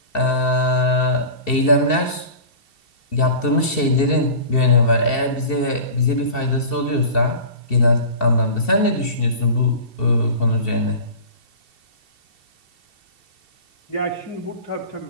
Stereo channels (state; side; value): late; right; 2.7 ms